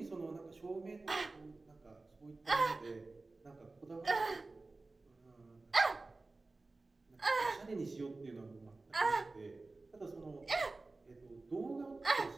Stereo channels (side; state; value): left; quieter; 3.4 dB